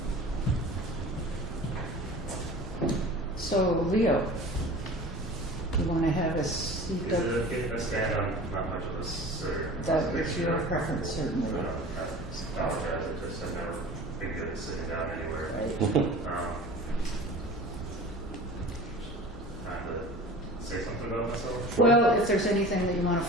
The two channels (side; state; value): both; normal; correlation 0.39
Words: you. So, Leo, you want to have a seat Is up? it okay if I stand on not much of a sir? That is your preference, certainly. I apologize, I just have never been good at sitting down anywhere. Right. Time to say something about myself? Well, if there's anything that you want to